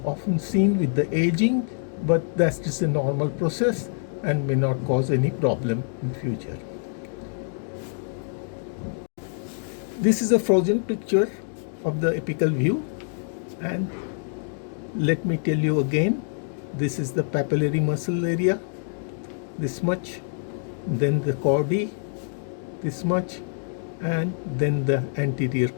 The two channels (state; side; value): silent; right; 61 dB below the other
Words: often seen with the aging, but that's just a normal process and may not cause any problem in future. This is a frozen picture of the apical view, and let me tell you again, this is the papillary muscle area, this much, then the chordae, this much, and then the anterior